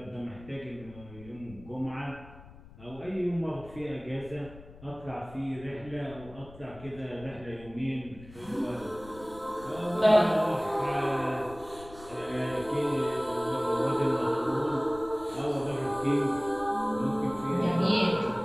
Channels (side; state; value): left; noise; rumble, 19 dB below the sound